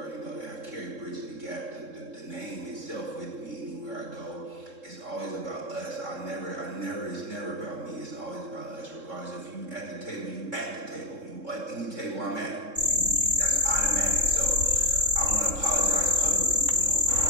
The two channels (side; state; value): left; late; 3.7 ms